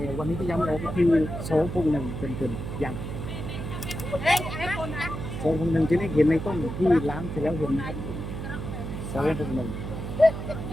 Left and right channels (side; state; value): right; noise; hum, 6 dB below the sound